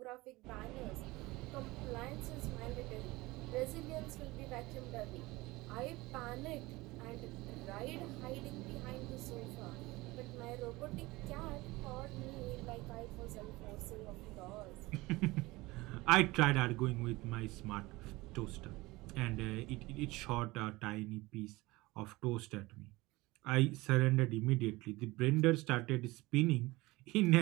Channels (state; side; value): quieter; left; 21.0 dB